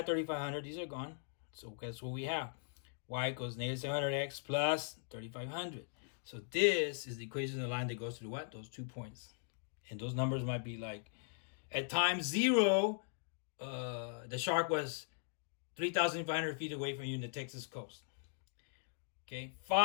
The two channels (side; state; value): right; silent; digital silence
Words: 3,500. These are gone. So guess what we have? Y equals negative 700x plus 3,500. So this is the equation of the line that goes to what? Those 2 points. And those numbers might be like, at time 0, the shark was 3,500 feet away from you in the Texas coast. Okay,